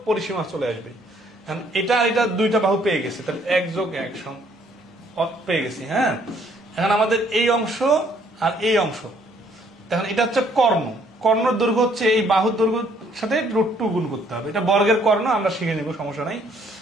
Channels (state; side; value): normal; both; correlation 0.64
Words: পরিসীমা চলে আসবে। এটা আর এটা 2টা বাহু পেয়ে গেছে, তাহলে 1 যোগ 1 পেয়ে গেছি। হ্যাঁ, এখন আমাদের এই অংশ আর এই অংশ, এখন এটা হচ্ছে কর্ণর দৈর্ঘ্য হচ্ছে এই বাহুর দৈর্ঘ্যের সাথে √2 গুণ করতে হবে। এটা বর্গের কর্ণ, আমরা শিখে নিব, সমস্যা নাই।